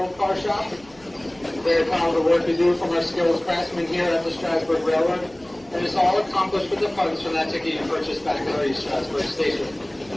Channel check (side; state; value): right; noise; hum, 27 dB below the sound